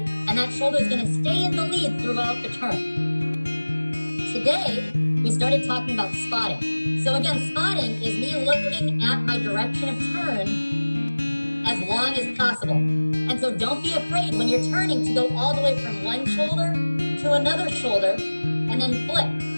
that shoulder is going to stay in the lead throughout the turn. Today, we started talking about spotting. So again, spotting is me looking at my direction of turn as long as possible. And so don't be afraid when you're turning to go all the way from one shoulder to another shoulder, and then flip,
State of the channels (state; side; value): inverted; both; correlation -1.00